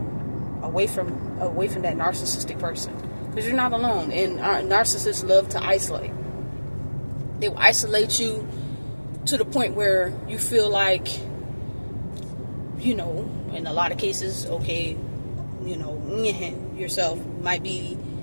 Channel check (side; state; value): both; inverted; correlation -1.00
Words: Away from that narcissistic person, because you're not alone. And narcissists love to isolate. They will isolate you to the point where you feel like, in a lot of cases, okay, yourself might be